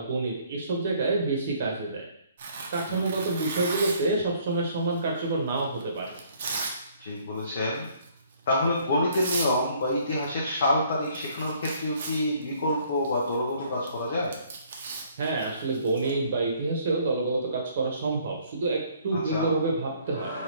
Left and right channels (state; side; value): inverted; both; correlation -0.61